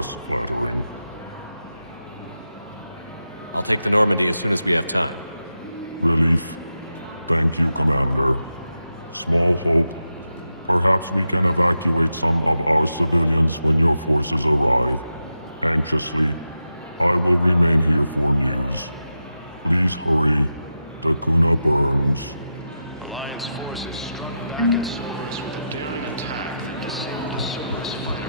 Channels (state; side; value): inverted; both; correlation -0.88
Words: flattering. I'll take the Normandy as soon as we have time. Relief. Thank you, Commander. Small hope. Perhaps we can evacuate some of our civilians when your forces arrive. Anxiously, I will remain here for news. Please hurry. Dakuna burns. With a daring attack.